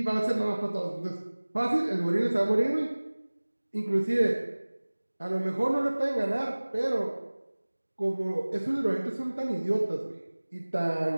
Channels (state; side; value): inverted; both; correlation -1.00